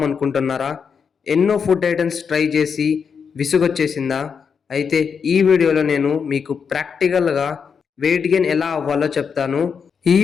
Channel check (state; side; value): quieter; right; 6.3 dB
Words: ఎన్నో ఫుడ్ ఐటమ్స్ ట్రై చేసి విసుగొచ్చేసిందా? అయితే ఈ వీడియోలో నేను మీకు ప్రాక్టికల్‌గా వెయిట్ గెయిన్ ఎలా అవ్వాలో చెప్తాను. ఈ